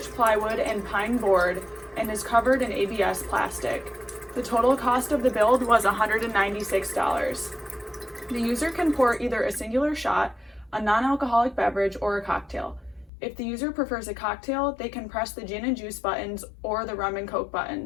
plywood and pine board and is covered in ABS plastic. The total cost of the build was $196. The user can pour either a singular shot, a non-alcoholic beverage, or a cocktail. If the user prefers a cocktail, they can press the gin and juice buttons or the rum and coke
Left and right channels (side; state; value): right; drops out; at 13.1 s